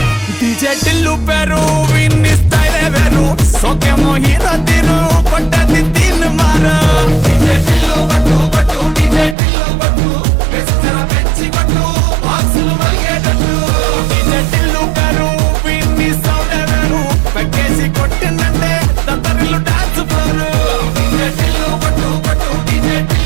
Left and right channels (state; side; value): drops out; left; at 9.3 s